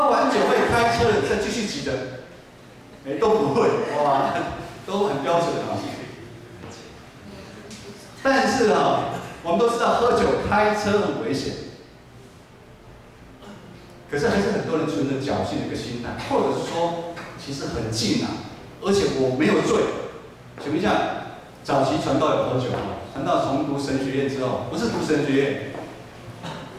完酒会开车的再继续举的，都不会，哇，都很标准啊。但是我们都知道喝酒开车很危险。可是还是很多人存着侥幸的一个心态，或者是说，其实很近而且我没有醉。请问一下，早期传道有喝酒吗？传道从读神学院之后，不是读神学院，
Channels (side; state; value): both; identical; correlation 1.00